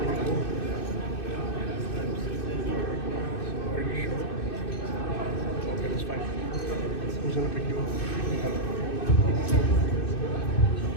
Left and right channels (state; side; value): late; right; 2.6 ms